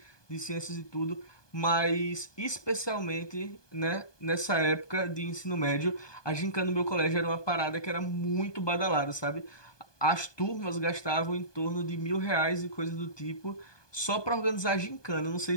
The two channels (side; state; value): right; late; 1.2 ms